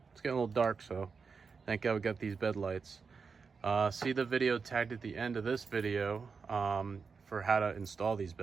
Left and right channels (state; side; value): quieter; left; 5.2 dB